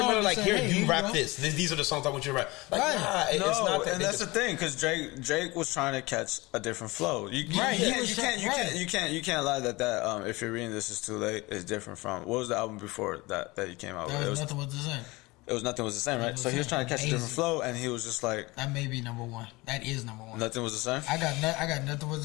like, here, you rap this. These are the songs I want you to rap. Like, it's not that. And that's the thing, because Drake was trying to catch a different flow. You can't lie that if you're reading This Is Too Late is different from what was the album before that he came out with? It was Nothing Was the Same. It was Nothing Was the Same, right? So he was trying to catch a different flow, and he was just like, that may be number one. That is number one. Nothing Was the Same. I got Nothing Was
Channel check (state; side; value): quieter; right; 22.6 dB